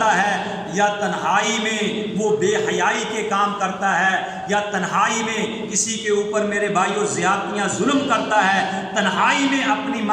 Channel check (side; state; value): both; identical; correlation 1.00